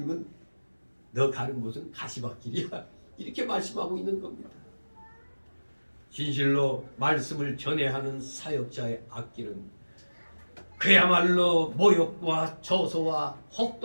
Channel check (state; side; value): inverted; both; correlation -1.00